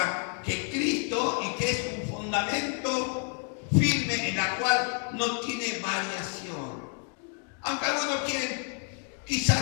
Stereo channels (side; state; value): right; quieter; 37.9 dB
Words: que es Cristo, y que es un fundamento firme en la cual no tiene variación. Aunque algunos quieren